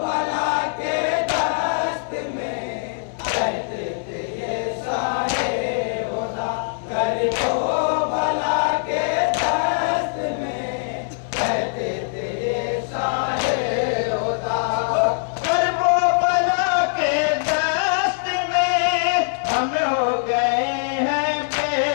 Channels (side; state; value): right; silent; 64 dB below the other